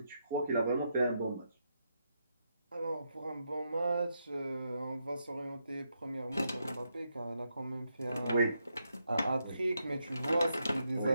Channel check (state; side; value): inverted; both; correlation -0.81